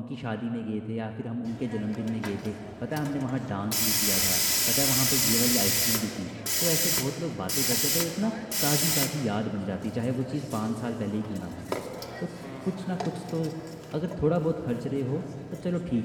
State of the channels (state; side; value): identical; both; correlation 1.00